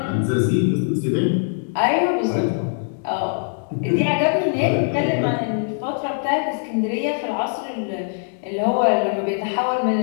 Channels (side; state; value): right; silent; digital silence